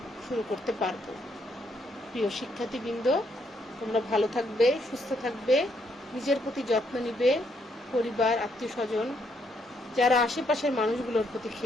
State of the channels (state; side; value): normal; both; correlation 0.74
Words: শুরু করতে পারবো। প্রিয় শিক্ষার্থীবৃন্দ, তোমরা ভালো থাকবে, সুস্থ থাকবে, নিজের প্রতি যত্ন নিবে, পরিবার, আত্মীয় স্বজন, যারা আশেপাশের মানুষগুলোর প্রতি